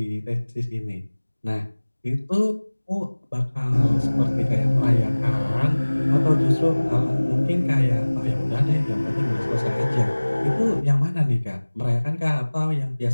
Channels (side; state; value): both; inverted; correlation -1.00